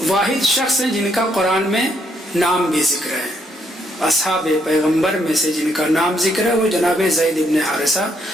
واحد شخص ہیں جن کا قرآن میں نام بھی ذکر ہے، اصحاب پیغمبر میں سے جن کا نام ذکر ہے وہ جناب زید ابن حارثہ۔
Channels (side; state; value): both; normal; correlation 0.73